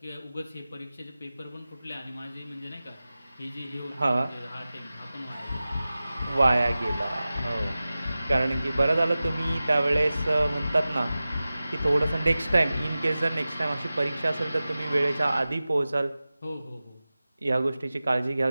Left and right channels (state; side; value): inverted; both; correlation -0.96